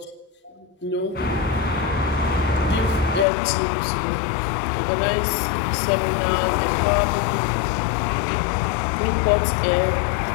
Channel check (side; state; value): right; drops out; at 3.2 s